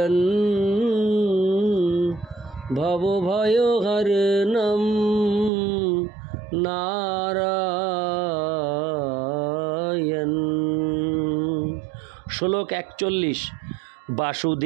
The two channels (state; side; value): drops out; left; at 5.5 s